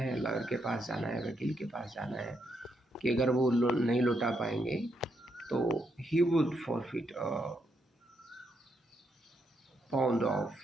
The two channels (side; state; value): both; normal; correlation 0.79